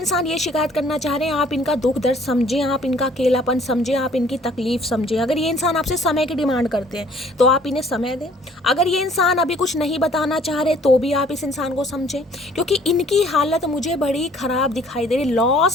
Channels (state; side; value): normal; both; correlation 0.58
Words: ये शिकायत करना चाह रहे हैं, आप इनका दुख दर्द समझें, आप इनका अकेलापन समझें, आप इनकी तकलीफ समझें। अगर ये इंसान आपसे समय की डिमांड करते हैं तो आप इन्हें समय दें। अगर ये इंसान अभी कुछ नहीं बताना चाह रहे तो भी आप इस इंसान को समझें, क्योंकि इनकी हालत मुझे बड़ी ख़राब दिखाई दे रही।